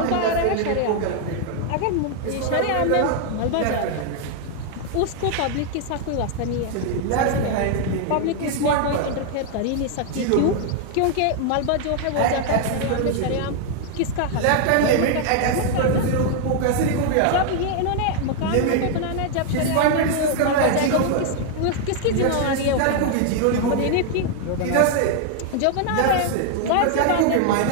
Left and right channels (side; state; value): both; different; correlation 0.00